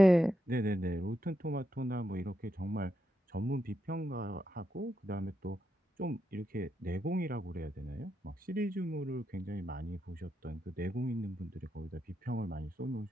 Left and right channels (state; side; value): normal; both; correlation 0.84